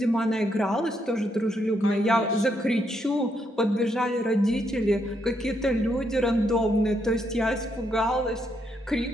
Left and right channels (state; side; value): normal; both; correlation 0.77